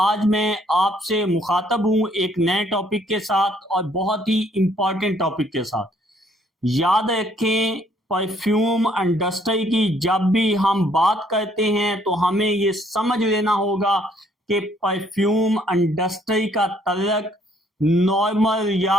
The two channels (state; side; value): normal; both; correlation 0.65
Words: मैं आपसे मुखातब हूं एक नए टॉपिक के साथ और बहुत ही इंपॉर्टेंट टॉपिक के साथ। याद रखें, परफ्यूम इंडस्ट्री की जब भी हम बात करते हैं तो हमें ये समझ लेना होगा कि परफ्यूम इंडस्ट्री का तल्लक नॉर्मल